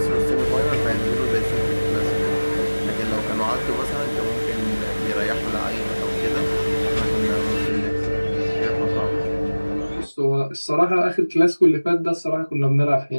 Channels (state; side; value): inverted; both; correlation -1.00